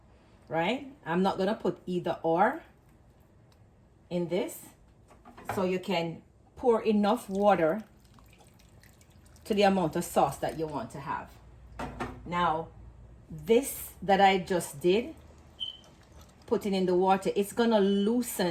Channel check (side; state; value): both; identical; correlation 1.00